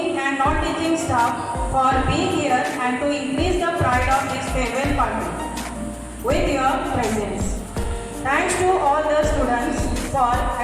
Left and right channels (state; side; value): identical; both; correlation 1.00